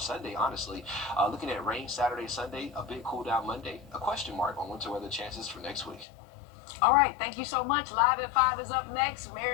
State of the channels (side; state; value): right; drops out; at 6.1 s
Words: Sunday, honestly. Looking at rain Saturday, Sunday, a big cool down Monday. A question mark on winter weather chances for next week. All right, thank you so much. Live at 5 is up next.